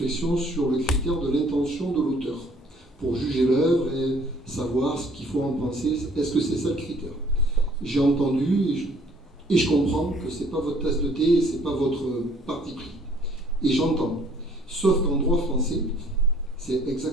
sur le critère de l'intention de l'auteur pour juger l'œuvre et savoir ce qu'il faut en penser. Est-ce que c'est ça le critère? J'ai entendu et je comprends que ce n'est pas votre tasse de thé et ce n'est pas votre parti pris. Et j'entends. Sauf qu'en droit français, c'est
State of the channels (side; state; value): both; normal; correlation 0.59